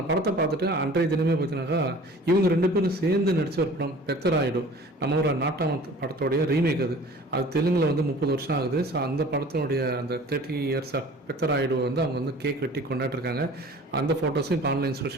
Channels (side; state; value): both; normal; correlation 0.46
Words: படத்தை பார்த்துட்டு அன்றைய தினமே பார்த்தீங்கன்னாக்கா இவங்க ரெண்டு பேரும் சேர்ந்து நடித்த ஒரு படம் பெத்தராயிடு, நம்ம ஒரு நாட்டாம படத்தோடைய ரீமேக். அது தெலுங்கில் வந்து 30 வருஷம் ஆகுது. ஸோ அந்த படத்தினுடைய அந்த 30 இயர்ஸ் ஆஃப் பெத்தராயிடு வந்து அவங்க வந்து கேக் வெட்டி கொண்டாடிருக்காங்க. அந்த ஃபோட்டோஸும் இப்போ ஆன்லைன்